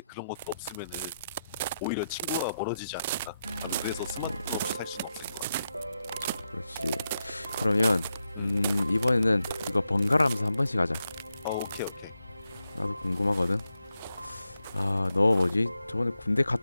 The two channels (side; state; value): both; inverted; correlation -0.87